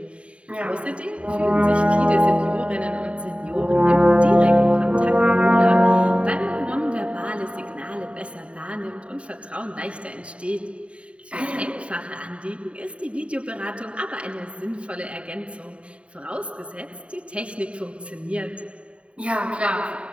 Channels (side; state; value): left; late; 0.061 ms